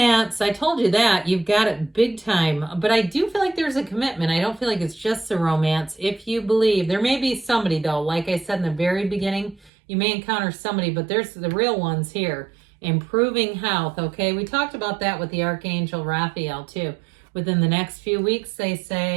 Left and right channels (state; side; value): drops out; left; at 9.7 s